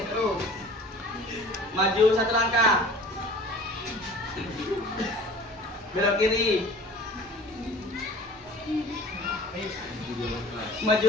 terus. Maju 1 langkah. Belok kiri.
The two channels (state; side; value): normal; both; correlation 0.45